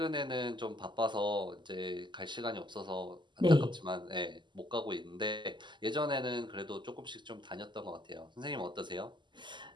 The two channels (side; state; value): left; late; 0.22 ms